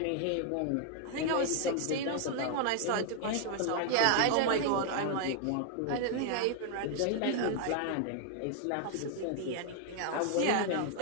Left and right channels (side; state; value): both; different; correlation 0.00